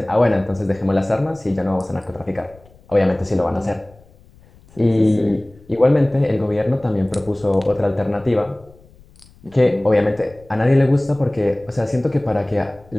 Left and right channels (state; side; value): noise; left; rumble, 26 dB below the sound